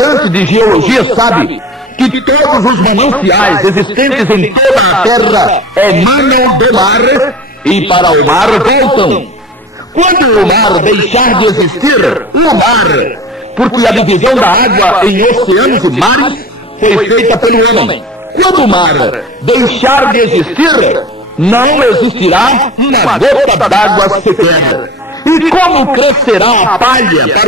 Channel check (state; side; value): normal; both; correlation 0.38